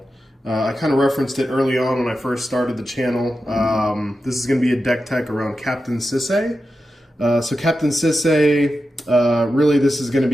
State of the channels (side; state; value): both; normal; correlation 0.91